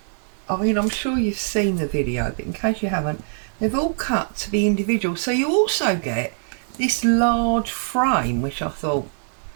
I mean, I'm sure you've seen the video, but in case you haven't, they've all cut to be individual. So you also get this large frame, which I thought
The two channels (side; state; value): left; silent; 64 dB below the other